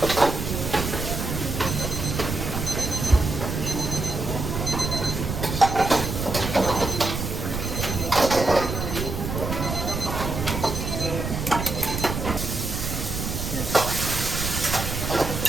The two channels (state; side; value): noise; right; rumble, 4 dB below the sound